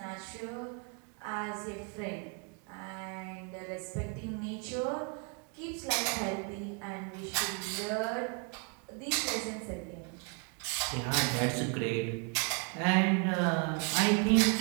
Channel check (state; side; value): quieter; left; 36.2 dB